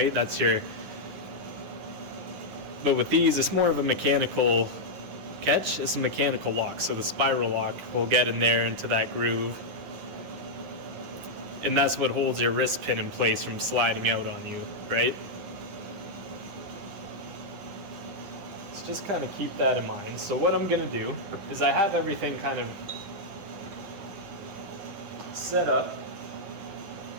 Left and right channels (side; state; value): left; late; 10 ms